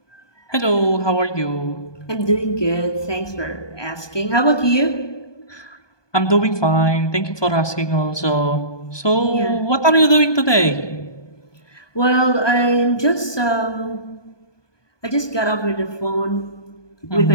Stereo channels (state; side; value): late; right; 1.2 ms